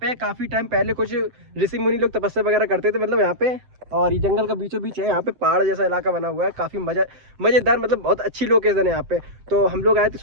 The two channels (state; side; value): late; left; 7.7 ms